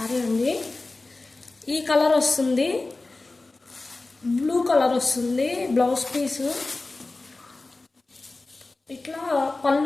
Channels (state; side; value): quieter; right; 3.3 dB